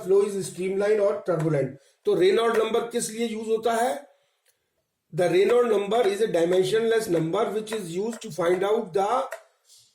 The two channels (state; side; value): identical; both; correlation 1.00